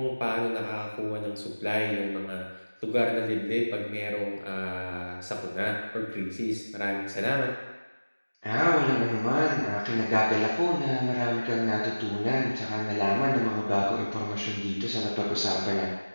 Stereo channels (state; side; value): inverted; both; correlation -1.00